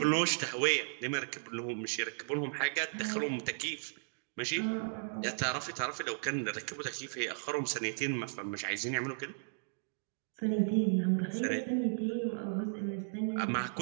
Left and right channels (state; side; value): silent; left; digital silence